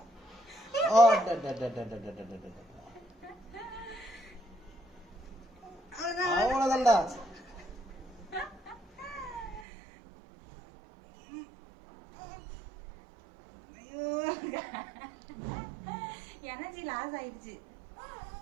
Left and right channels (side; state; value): left; drops out; at 9.7 s